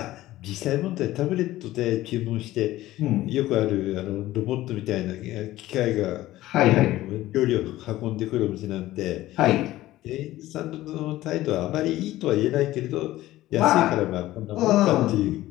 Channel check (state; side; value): quieter; right; 15.9 dB